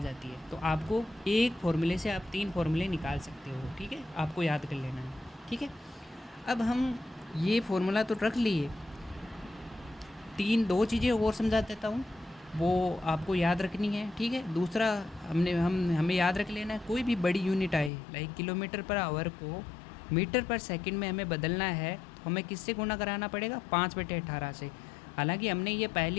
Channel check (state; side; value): drops out; right; at 17.9 s